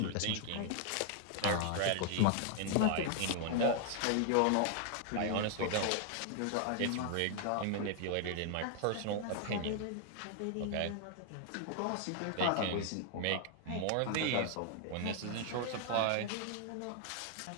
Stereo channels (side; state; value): both; different; correlation 0.00